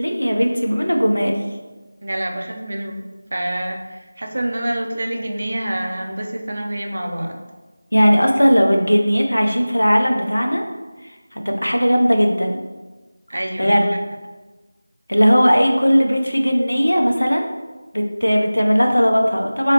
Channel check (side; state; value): both; inverted; correlation -0.99